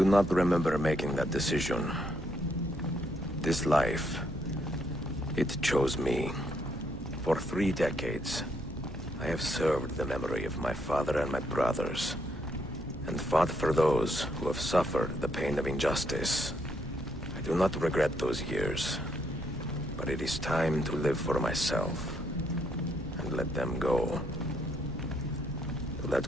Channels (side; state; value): both; normal; correlation 0.74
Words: not remember making that decision. This life, it chose me. For 3 decades, I have served the memory of my father and my brothers, and fought for those who have suffered the pain of injustice. I do not regret those years, but it is time to live for myself, and let them go. To